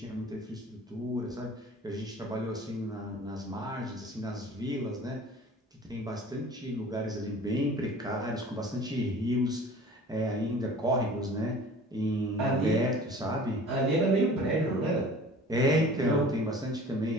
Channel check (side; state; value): both; normal; correlation 0.45